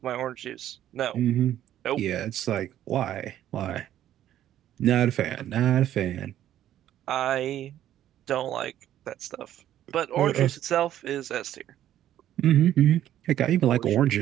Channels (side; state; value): left; quieter; 11.9 dB